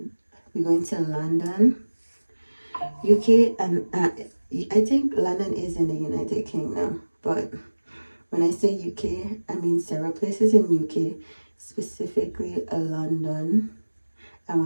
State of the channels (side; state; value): both; inverted; correlation -1.00